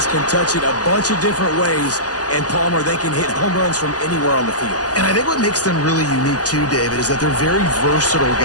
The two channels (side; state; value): right; late; 0.67 ms